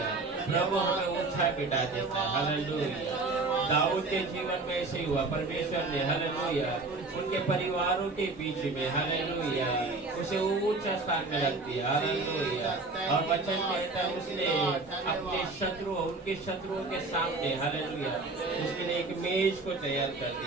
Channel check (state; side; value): quieter; left; 3.5 dB